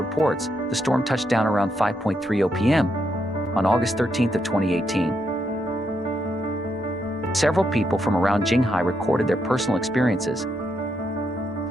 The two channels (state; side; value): normal; both; correlation 0.79